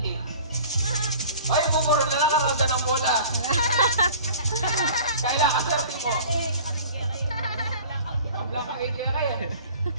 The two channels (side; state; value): both; inverted; correlation -0.44